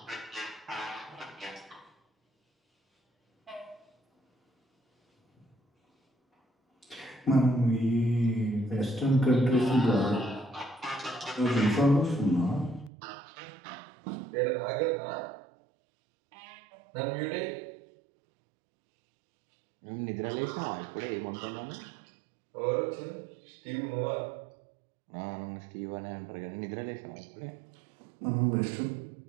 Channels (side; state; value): left; drops out; at 12.9 s